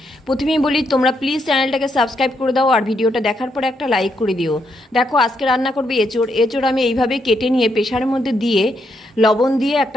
প্রথমেই বলি, তোমরা প্লিজ চ্যানেলটাকে সাবস্ক্রাইব করে দাও আর ভিডিওটা দেখার পরে একটা লাইক করে দিও। দেখো আজকে রান্না করবে এঁচোড়। এঁচোড় আমি এইভাবে কেটে নিয়ে প্রেশারের মধ্যে দিয়ে লবণ দিয়ে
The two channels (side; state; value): both; normal; correlation 0.78